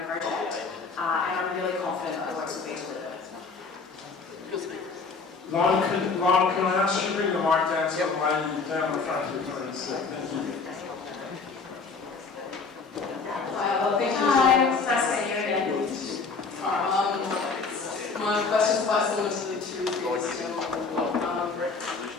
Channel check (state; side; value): quieter; right; 4.6 dB